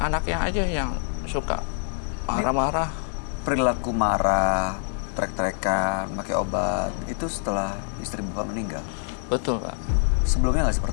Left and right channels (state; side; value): silent; right; 61 dB below the other